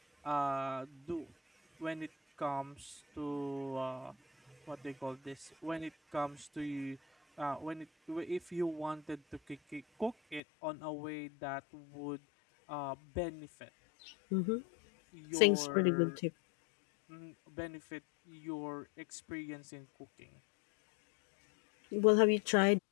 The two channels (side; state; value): right; drops out; at 10.4 s